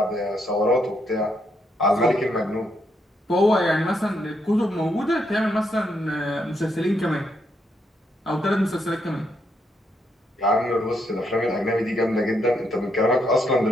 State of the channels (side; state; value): both; normal; correlation 0.77